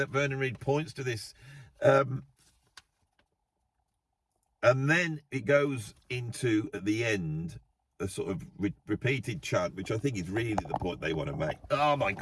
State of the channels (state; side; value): identical; both; correlation 1.00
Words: Vernon Reid points to this. And then it goes into, at the end, a sort of repeated chant, which I think is really the point they want to make. Oh my